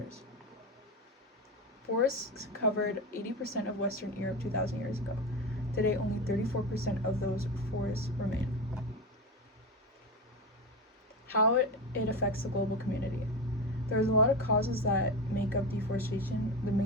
Forests covered 80% of Western Europe 2,000 years ago. Today, only 34% of those forests remain. How it affects the global community. There's a lot of causes that make up deforestation, the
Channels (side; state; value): both; normal; correlation 0.20